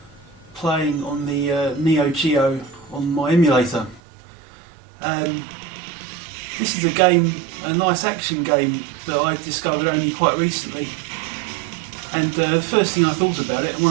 playing on the NEO.emu on my emulator. This is a game, a nice action game that I discovered only quite recently. And the first thing I thought about it, and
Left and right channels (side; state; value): left; drops out; at 4.0 s